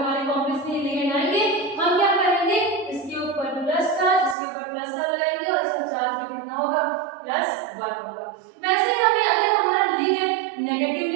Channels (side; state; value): left; drops out; at 4.4 s